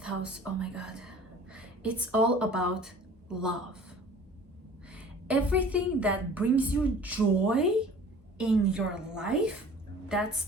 house, oh my god, it's all about love. Everything that brings you joy in your life, that's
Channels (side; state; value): both; normal; correlation 0.46